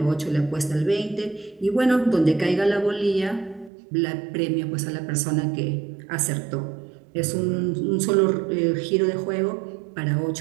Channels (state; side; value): drops out; left; at 3.7 s